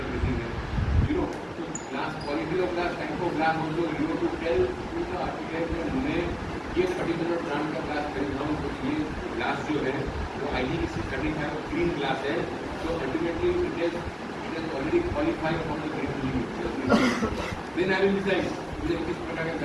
ये particular brand का glass खरीद रहा हूँ, तो ये ग्लास जो है वो IG635 ग्रीन ग्लास है, तो ultimately it is already qualified for the green limit. Then I will decide मुझे किस प्रकार का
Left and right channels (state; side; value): identical; both; correlation 1.00